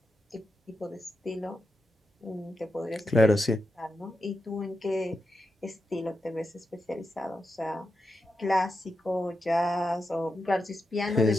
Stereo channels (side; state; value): both; normal; correlation 0.88